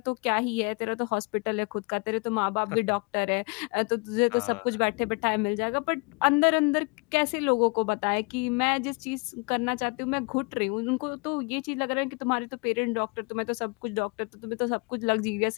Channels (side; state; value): right; quieter; 30.7 dB